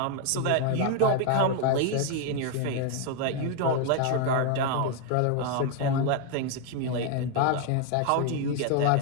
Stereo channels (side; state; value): both; different; correlation 0.01